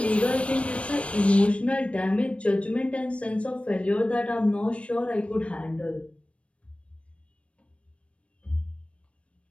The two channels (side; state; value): right; late; 0.061 ms